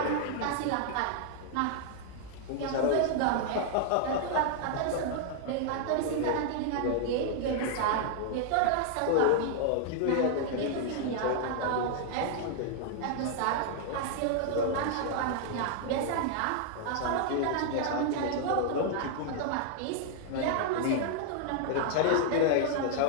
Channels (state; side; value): different; both; correlation 0.00